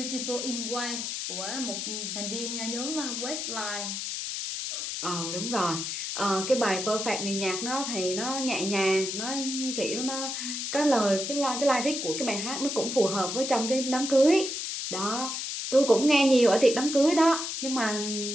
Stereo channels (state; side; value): noise; left; hiss, 4 dB below the sound